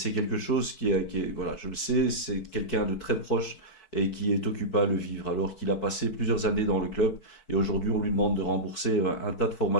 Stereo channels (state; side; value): late; right; 4.6 ms